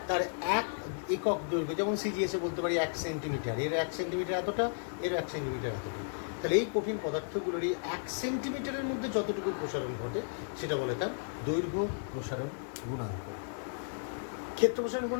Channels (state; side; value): silent; right; digital silence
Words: তার 1 একক দৈর্ঘ্য, যেমন সিজিএসে বলতে পারি 1 সেন্টিমিটার, এর 1 সেন্টিমিটার এতটা, এর 1 সেন্টিমিটার এতটা। তাহলে এই কঠিন পদার্থগুলোরই 1 সেন্টিমিটারের মধ্যে যতটুকু প্রসারণ ঘটে সেটা বলে তার দৈর্ঘ্য প্রসারণ গুণাঙ্ক। ক্ষেত্র প্রসারণ